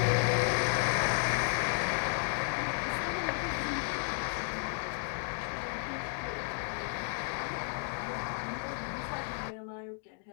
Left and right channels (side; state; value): right; silent; digital silence